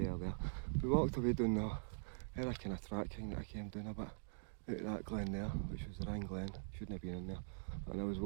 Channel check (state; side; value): silent; left; digital silence